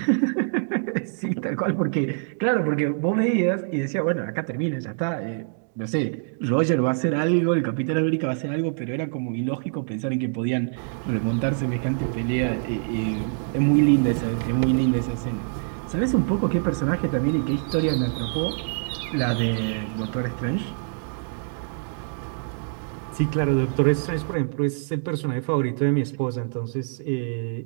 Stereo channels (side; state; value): left; silent; digital silence